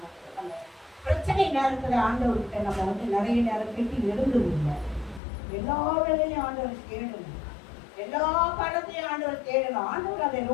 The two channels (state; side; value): drops out; right; at 5.2 s